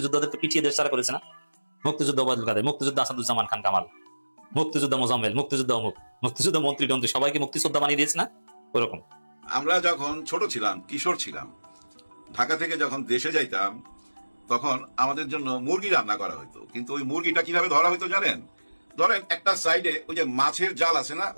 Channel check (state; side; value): inverted; both; correlation -1.00